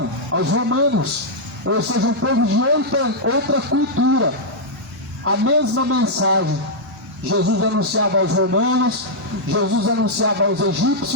aos romanos, ou seja, um povo de outra cultura. A mesma mensagem. Jesus anunciava aos romanos, Jesus anunciava aos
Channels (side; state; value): both; normal; correlation -0.07